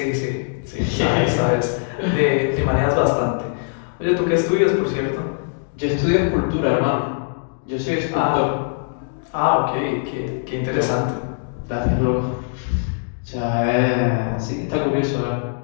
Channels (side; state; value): right; silent; digital silence